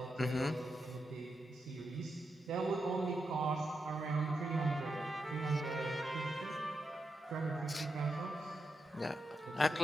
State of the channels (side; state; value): both; normal; correlation 0.86